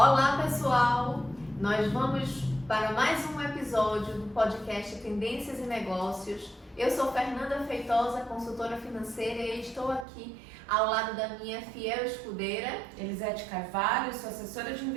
pessoal! Nós vamos para mais um episódio do podcast Tendências e Negócios. Eu sou Fernanda Feitosa, consultora financeira, e estou aqui ao lado da minha fiel escudeira, Elisete Carvalho, sou assessora de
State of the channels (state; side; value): drops out; left; at 10.1 s